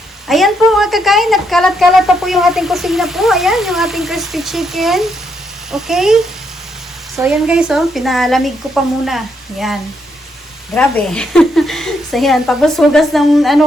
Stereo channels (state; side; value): normal; both; correlation 0.77